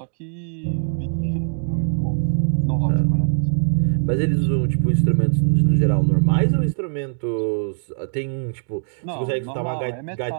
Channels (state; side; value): silent; left; digital silence